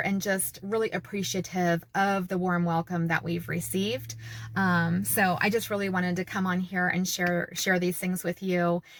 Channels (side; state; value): both; identical; correlation 1.00